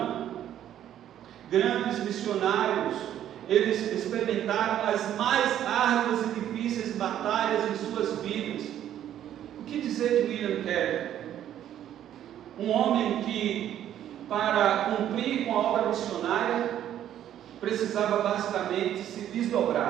Grandes missionários, eles experimentaram as mais árduas e difíceis batalhas em suas vidas. O que dizer de William Carey? Um homem que, para cumprir com a obra missionária, precisava basicamente se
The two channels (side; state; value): left; quieter; 11.1 dB